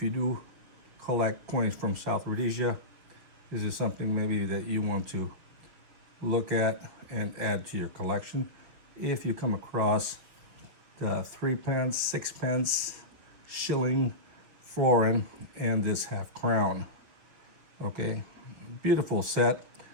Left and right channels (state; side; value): late; left; 6.4 ms